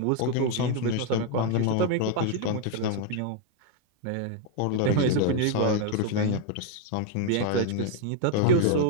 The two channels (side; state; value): both; different; correlation 0.00